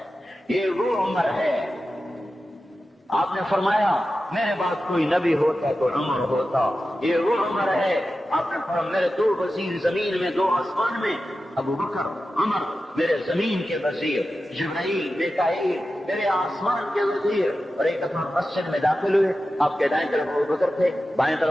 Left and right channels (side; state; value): both; normal; correlation 0.93